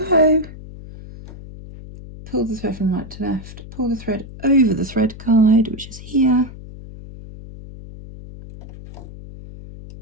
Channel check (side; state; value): left; noise; hum, 15 dB below the sound